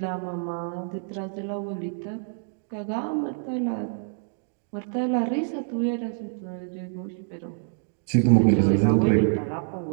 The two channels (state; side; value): silent; left; 60 dB below the other